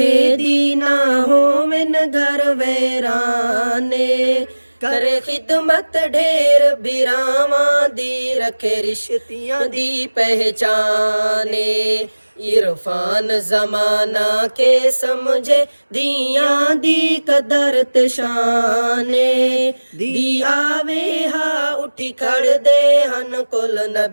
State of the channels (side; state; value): both; inverted; correlation -1.00